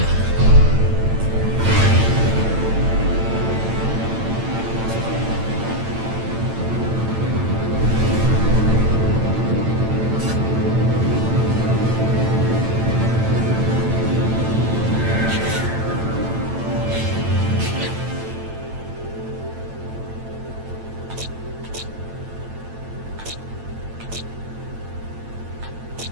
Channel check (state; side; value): late; left; 8.9 ms